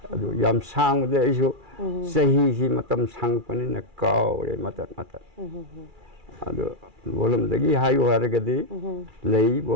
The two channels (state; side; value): late; left; 2.4 ms